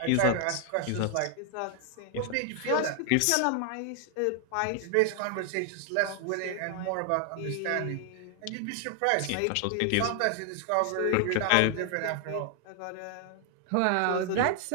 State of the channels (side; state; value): both; different; correlation 0.00